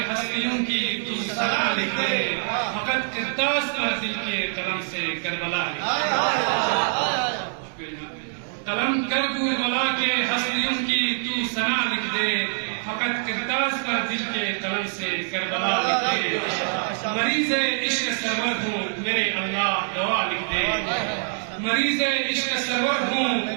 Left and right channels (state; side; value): silent; left; digital silence